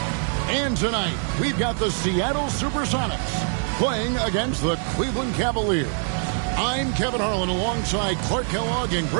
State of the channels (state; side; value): silent; left; 58 dB below the other